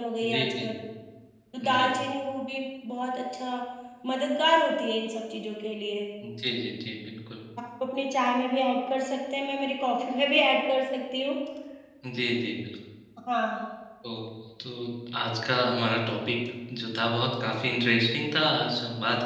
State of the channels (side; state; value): both; identical; correlation 1.00